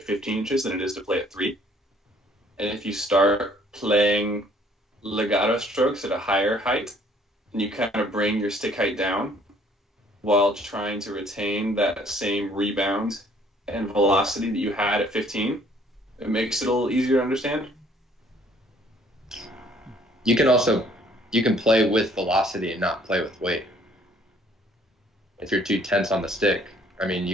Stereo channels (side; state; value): both; normal; correlation 0.60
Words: 15 inches than it is to play at 3. And if you start playing legato strokes at a higher height, and you kind of bring your stick height down while trying to retain that same rebound and velocity that you had at 15, it makes it a little easier to understand. You can play with velocity and not play with weight. If you're too tense on the stick, I mean,